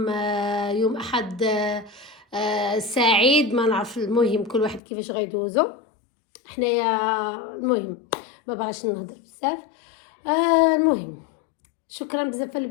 يوم احد سعيد. ما نعرف المهم كل واحد كيفاش غيدوزو. حنايا المهم ما بغاش نهضر بزاف. المهم شكرا بزاف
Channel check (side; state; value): right; drops out; at 4.8 s